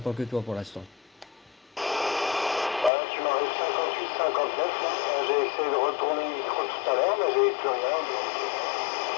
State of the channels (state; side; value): drops out; right; at 2.9 s